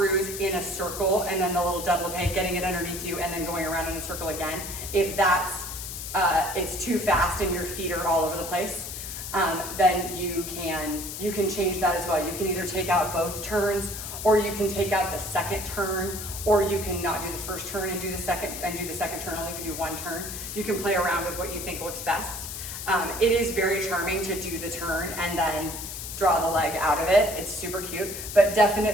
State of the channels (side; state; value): left; noise; hiss, 8 dB below the sound